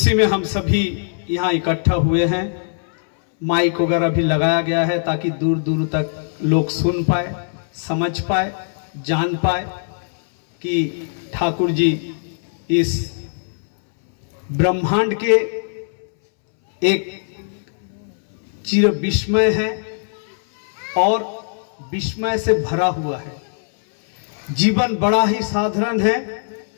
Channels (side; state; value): right; silent; 64 dB below the other